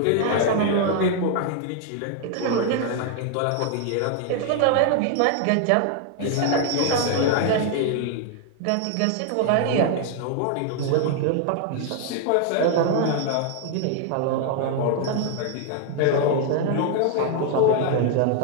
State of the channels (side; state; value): both; different; correlation 0.00